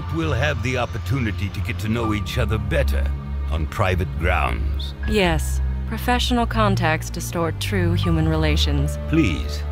we'll have the opportunity to get to know each other better on private grounds. Yes, professional contacts distort true human relations. Please,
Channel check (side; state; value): both; identical; correlation 1.00